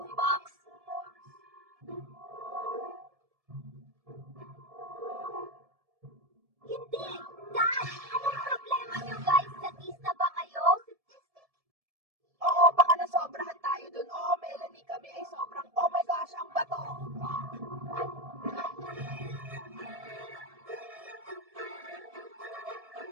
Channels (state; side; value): late; left; 1.7 ms